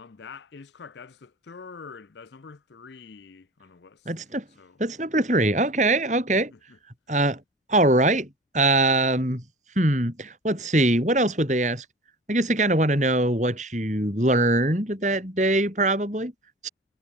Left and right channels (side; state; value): both; normal; correlation 0.38